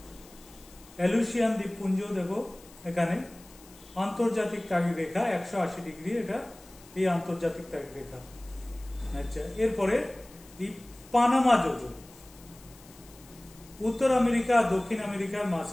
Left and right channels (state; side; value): noise; left; hiss, 23 dB below the sound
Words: এলুসিয়ান দ্বীপপুঞ্জ দেখো এখানে, আন্তর্জাতিক তাগিদ রেখা 180 ডিগ্রি, এটা এই আন্তর্জাতিক তাগিদ রেখা। আচ্ছা, এরপরে এই পানামা যোজক উত্তর আমেরিকা আর দক্ষিণ আমেরিকার